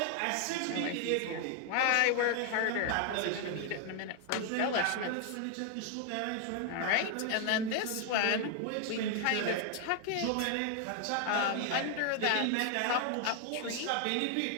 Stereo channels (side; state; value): both; different; correlation 0.00